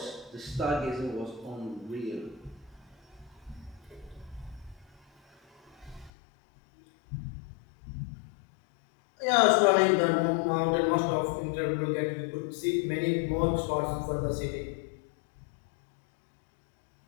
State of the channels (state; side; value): drops out; right; at 6.1 s